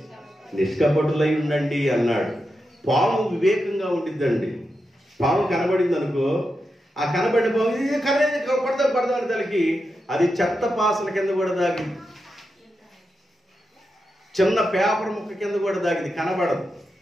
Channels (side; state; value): both; normal; correlation 0.88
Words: నిష్కపటులై ఉండండి అన్నాడు. పాము వివేకంగా ఉండిద్దండి. పాము కనబడింది అనుకో, ఆ కనబడిన పాము ఇది కొడదాం తలకి అది చెత్త పాసల కింద కూడా దాగింది, చిన్న పేపర్ ముక్క కింద కూడా దాగింది, కనబడదు.